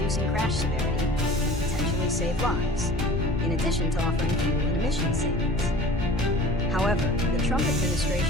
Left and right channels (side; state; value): both; normal; correlation 0.43